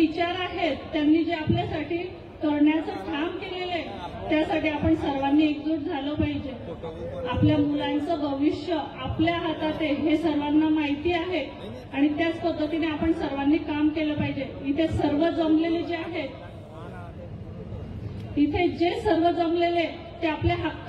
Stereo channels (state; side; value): identical; both; correlation 1.00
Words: आहेत त्यांनी जे आपल्यासाठी करण्याचं काम केलेलं आहे त्यासाठी आपण सर्वांनी एकजूट झालं पाहिजे। आपल्या मुलांचं भविष्य आपल्या हातात आहे हे सर्वांना माहिती आहे आणि त्याच पद्धतीने आपण सर्वांनी काम केलं पाहिजे। इथे सर्व जमलेले जे आहेत, इथे जे सर्व जमलेले ते आपल्या